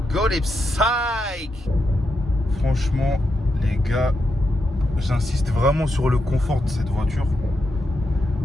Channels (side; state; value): both; normal; correlation 0.84